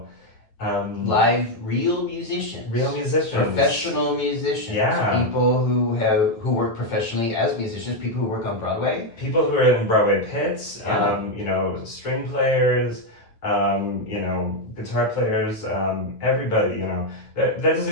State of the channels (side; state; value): right; late; 9.0 ms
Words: live, real musicians, professional musicians, people who work professionally as musicians, people who work on Broadway, people who are in Broadway pits, string players, guitar players, everybody. That